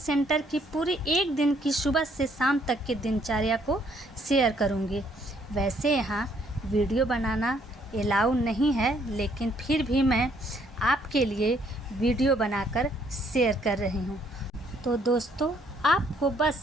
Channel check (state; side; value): normal; both; correlation 0.67